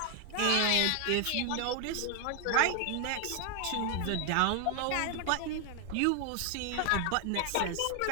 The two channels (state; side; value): different; both; correlation 0.00